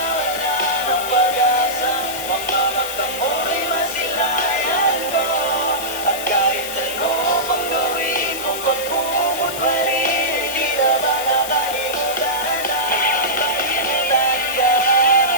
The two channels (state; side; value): noise; left; hiss, 8 dB below the sound